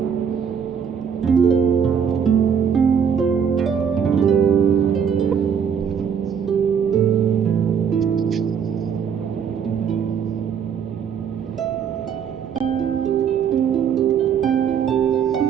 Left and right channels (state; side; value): quieter; left; 7.4 dB